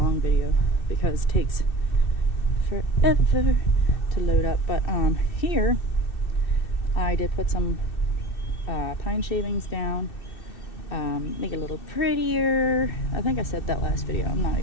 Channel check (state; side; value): late; right; 2.6 ms